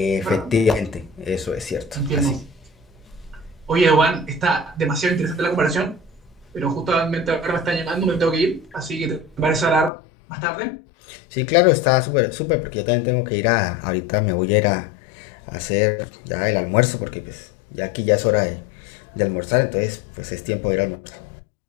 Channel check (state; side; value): drops out; right; at 9.9 s